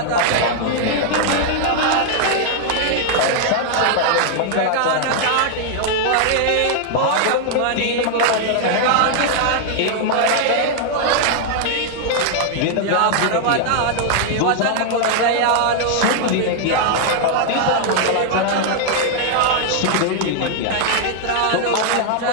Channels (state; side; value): different; both; correlation 0.00